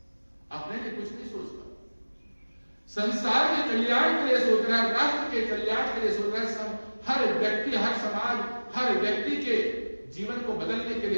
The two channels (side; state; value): both; inverted; correlation -1.00